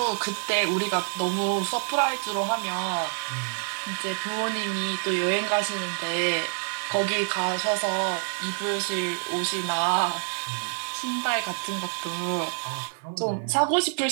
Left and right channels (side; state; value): left; silent; 60 dB below the other